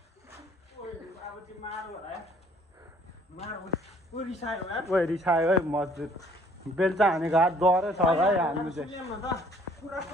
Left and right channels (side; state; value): both; normal; correlation 0.58